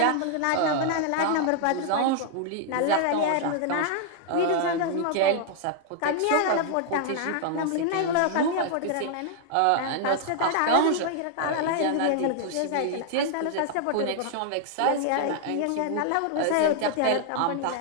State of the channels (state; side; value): different; both; correlation 0.00